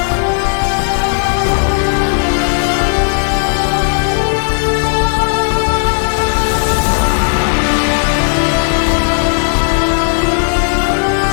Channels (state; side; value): silent; right; 69 dB below the other